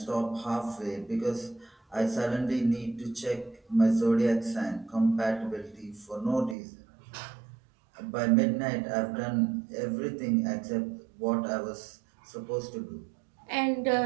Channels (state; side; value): drops out; left; at 6.6 s